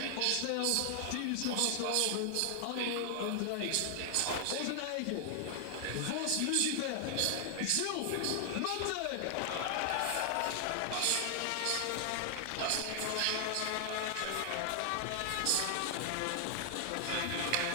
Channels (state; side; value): different; both; correlation 0.00